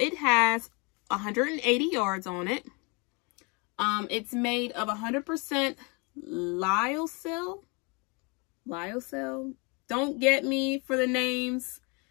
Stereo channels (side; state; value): right; quieter; 30.9 dB